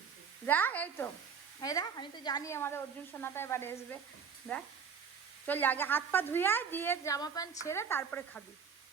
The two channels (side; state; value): left; quieter; 6.5 dB